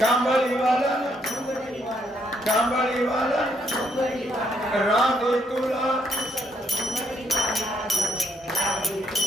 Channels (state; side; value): normal; both; correlation 0.73